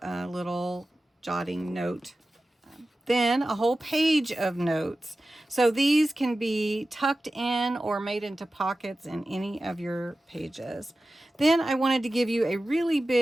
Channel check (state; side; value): normal; both; correlation 0.95